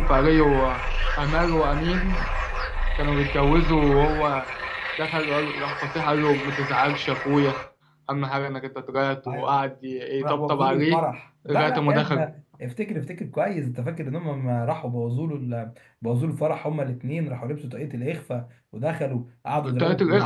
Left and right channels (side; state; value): both; identical; correlation 1.00